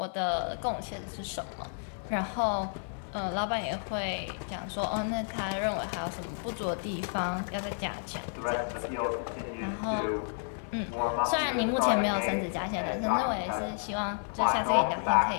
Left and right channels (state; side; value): silent; right; digital silence